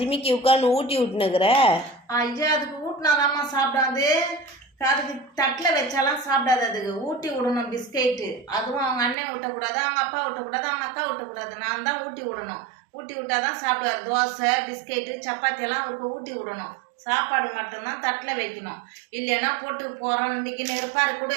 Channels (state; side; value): drops out; left; at 9.2 s